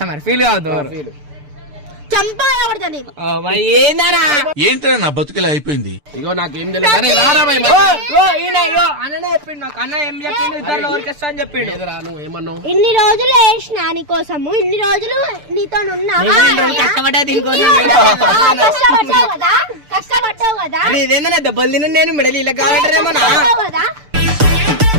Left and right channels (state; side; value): late; left; 6.8 ms